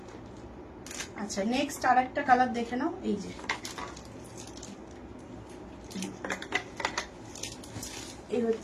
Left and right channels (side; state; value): both; identical; correlation 1.00